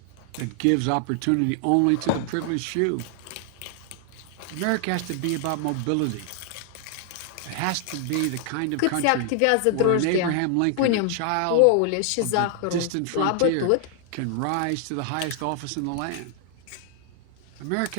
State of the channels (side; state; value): both; different; correlation 0.00